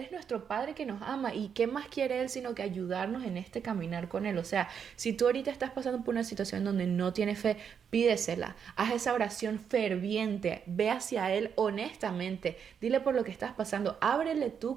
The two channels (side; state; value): left; quieter; 7.3 dB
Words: nuestro Padre que nos ama y ¿qué más quiere Él sino que ayudarnos en este caminar con Él? O sea, si tú ahorita estás pasando por una situación donde no tienes fe, pídesela, haz esa oración ferviente, ve hacia Él honestamente, dile por lo que estás pasando, ábrele